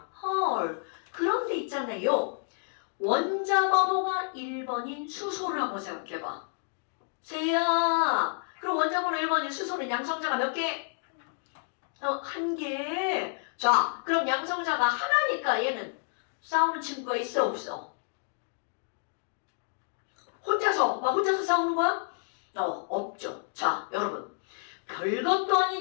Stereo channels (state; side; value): silent; right; digital silence